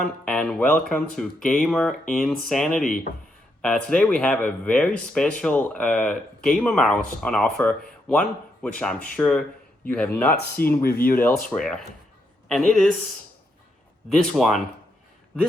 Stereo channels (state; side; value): normal; both; correlation 0.79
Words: and welcome to Gamer Insanity. Today we have a very special gamer mouse on offer, one which I'm sure you have not seen reviewed elsewhere. And it is this one,